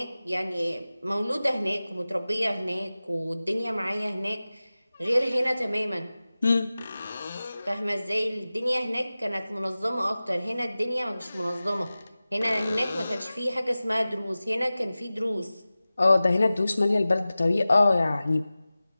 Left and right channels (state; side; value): inverted; both; correlation -0.97